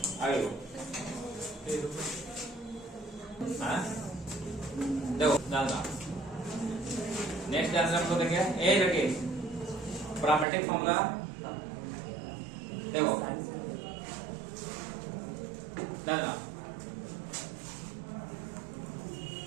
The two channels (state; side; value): drops out; left; at 10.5 s